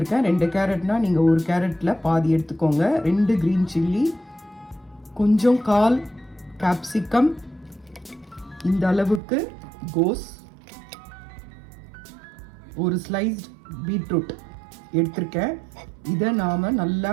2 கேரட்னா நீங்கள் ஒரு கேரட்டில் பாதி எடுத்துக்கோங்க. 2 க்ரீன் சில்லி, கொஞ்சம் 1/4 கேப்சிகம், இந்த அளவுக்கு கோஸ், ஒரு ஸ்லைஸ்ட் பீட்ரூட் எடுத்திருக்கேன். இதை நாம் நல்லா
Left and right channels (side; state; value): left; drops out; at 9.2 s